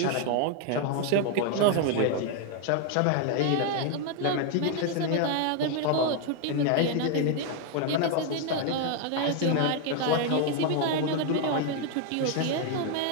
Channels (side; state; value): both; different; correlation 0.01